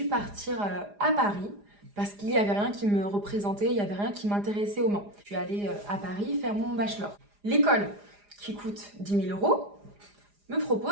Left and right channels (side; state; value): left; late; 4.9 ms